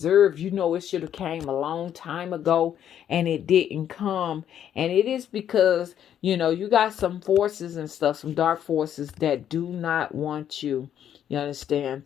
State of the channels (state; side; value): quieter; right; 9.9 dB